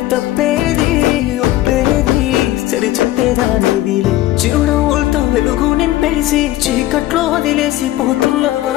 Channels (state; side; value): quieter; right; 15.4 dB